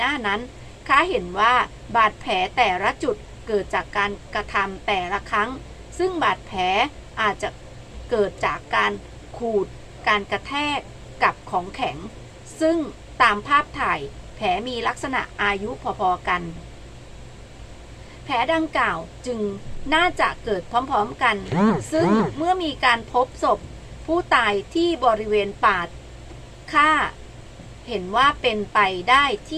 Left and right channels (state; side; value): identical; both; correlation 1.00